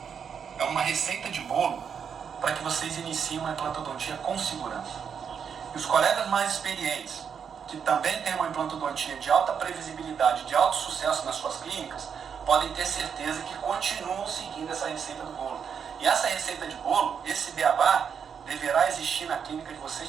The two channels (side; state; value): left; quieter; 7.1 dB